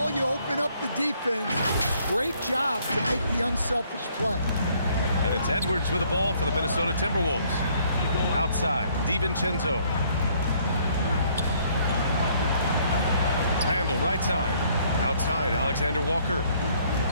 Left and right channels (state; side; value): inverted; both; correlation -0.64